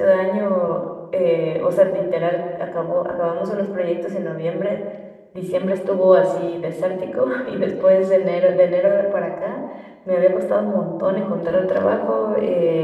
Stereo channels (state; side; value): identical; both; correlation 1.00